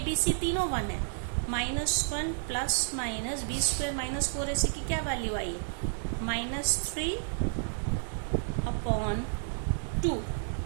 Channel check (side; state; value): left; silent; digital silence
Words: बी सी तीनों 1 है, -1 plus minus B square minus 4ac की क्या वैल्यू आई है, -3 अपॉन 2।